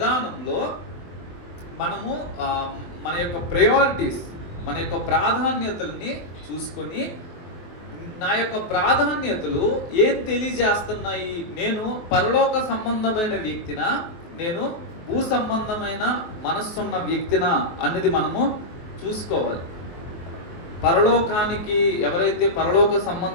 మనము మన యొక్క ప్రయారిటీస్, మన యొక్క ప్రాధాన్యతల్ని చూసుకొని, నా యొక్క ప్రాధాన్యతలు ఏం తెలియజేస్తున్నాయి, నేను పరలోక సంబంధమైన వ్యక్తినా, నేను భూ సంబంధమైన మనస్సున్న వ్యక్తినా అన్నది మనము చూసుకోవాలి. పరలోకానికి ఎవరైతే పరలోక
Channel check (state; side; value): late; right; 23 ms